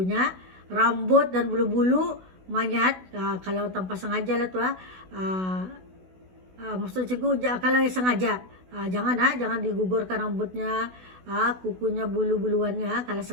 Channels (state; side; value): late; left; 16 ms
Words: Rambut dan bulu-bulu mayat, kalau tanpa sengaja lah tuh, maksud cikgu kalau sengaja, jangan digugurkan rambutnya, kukunya, bulu-buluannya kalau